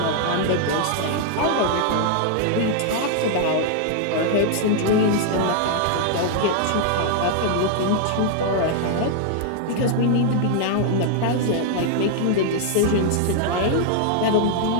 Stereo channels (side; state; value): both; different; correlation 0.00